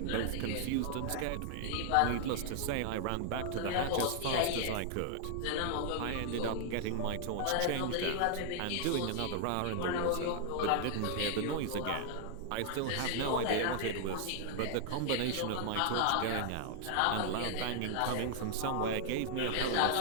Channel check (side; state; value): both; different; correlation 0.00